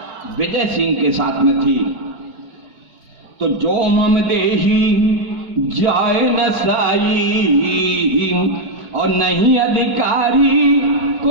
विजय सिंह के साथ में थी। तो जो मम देही जाए न साई, और नहीं अधिकारी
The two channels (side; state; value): left; late; 4.7 ms